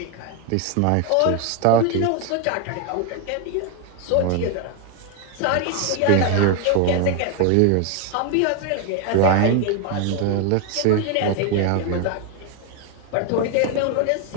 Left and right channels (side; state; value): both; different; correlation 0.01